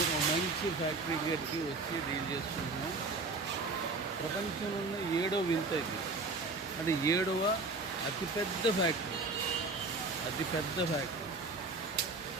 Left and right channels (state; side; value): quieter; left; 3.6 dB